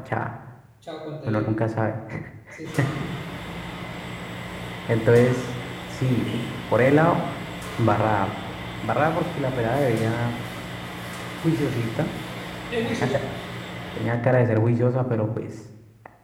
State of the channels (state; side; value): identical; both; correlation 1.00